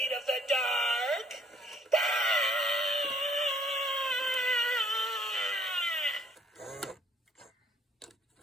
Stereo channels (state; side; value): normal; both; correlation 0.64